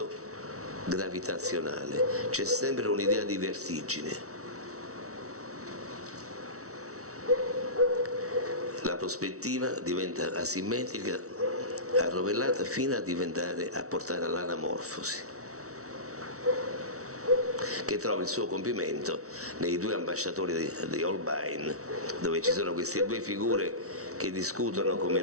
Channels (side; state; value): left; late; 0.64 ms